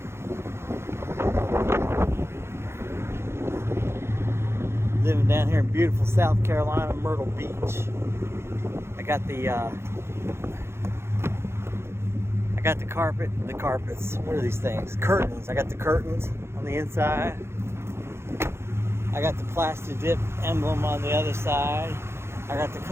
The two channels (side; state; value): left; late; 0.12 ms